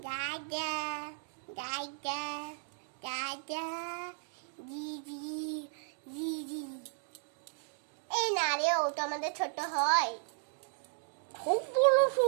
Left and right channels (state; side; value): silent; left; digital silence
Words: দাদা দাদা দাদা দিদি দিদি। এই না রে, ও তো আমাদের ছোট হয়। খুব বড়